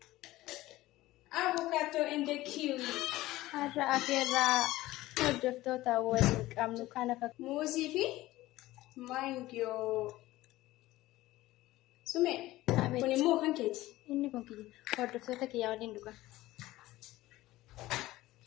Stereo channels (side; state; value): right; quieter; 17.2 dB